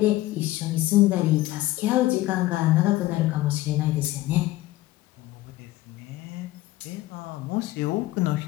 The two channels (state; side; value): quieter; right; 16.8 dB